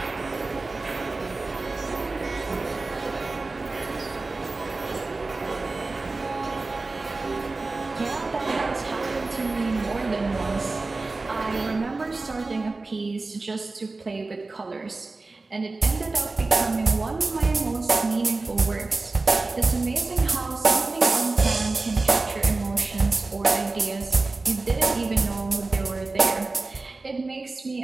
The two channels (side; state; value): left; quieter; 3.5 dB